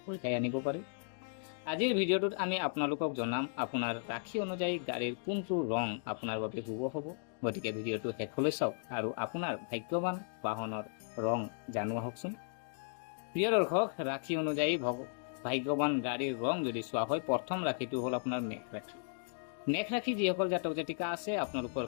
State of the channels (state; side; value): silent; right; digital silence